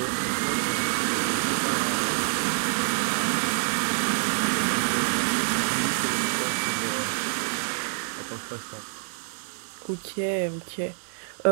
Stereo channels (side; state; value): left; silent; 60 dB below the other